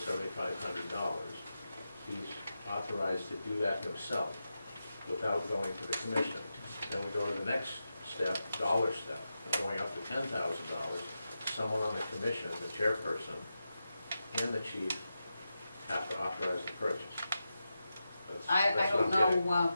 he's authorized to do that himself without going to the commission. Then we go to the next step, dollar step, going up to $10,000. Someone on the commission, the chairperson, and the chief have to authorize the purchase. I That's what don't I'm getting. know,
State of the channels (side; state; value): both; inverted; correlation -0.90